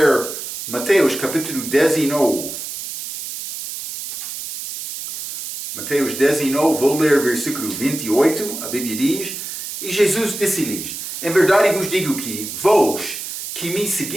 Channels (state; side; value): noise; right; hiss, 8 dB below the sound